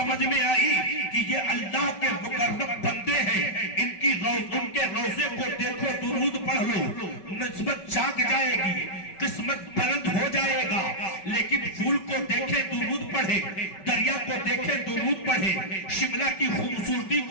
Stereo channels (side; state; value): right; late; 5.2 ms